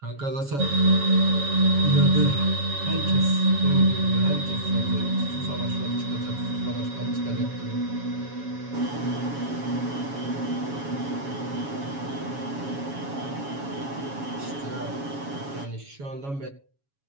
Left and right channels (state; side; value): late; left; 7.2 ms